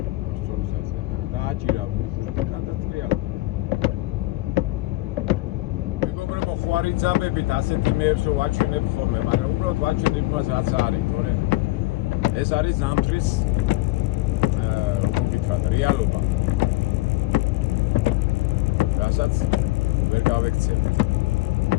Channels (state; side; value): quieter; right; 18.9 dB